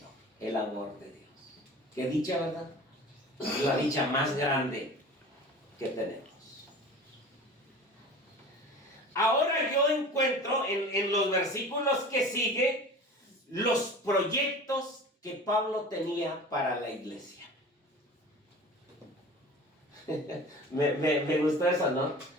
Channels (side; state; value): both; normal; correlation 0.38